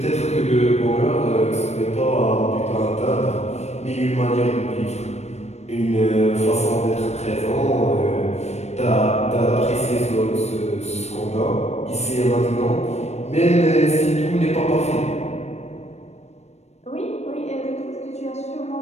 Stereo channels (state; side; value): late; right; 0.32 ms